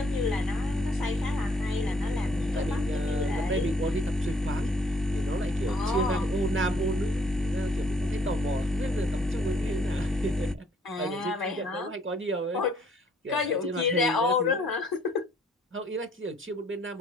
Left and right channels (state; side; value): normal; both; correlation 0.64